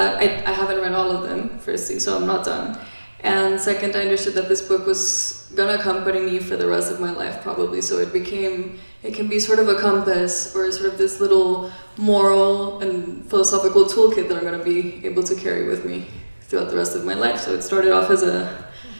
I haven't read all of them, firstly, so I'm not done. And second, I understood that this book was gonna accompany me for the rest of my life, probably. So it can be sort of a compass, or sort of this little moral and philosophical toolkit that I'm gonna be able to carry with me throughout the rest of my life. So it started off as a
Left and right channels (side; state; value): both; inverted; correlation -1.00